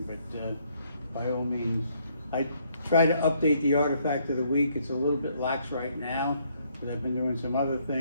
but by all means. I try to update the artifact of the week. It's a little bit lax right now, but I've been doing some other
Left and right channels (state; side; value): inverted; both; correlation -0.69